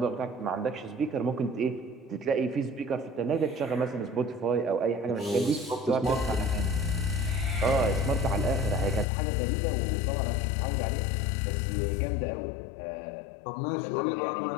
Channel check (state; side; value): drops out; right; at 9.1 s